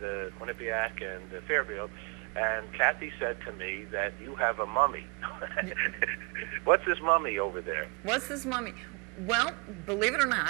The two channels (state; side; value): quieter; left; 32.7 dB